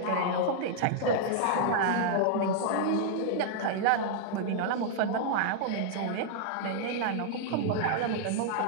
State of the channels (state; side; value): different; both; correlation -0.01